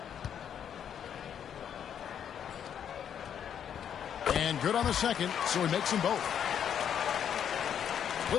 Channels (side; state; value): right; quieter; 8.8 dB